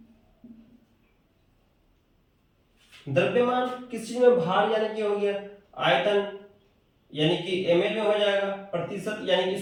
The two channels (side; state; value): both; identical; correlation 1.00